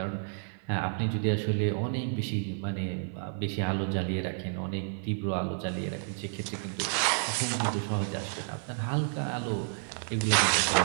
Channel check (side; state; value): left; silent; 55 dB below the other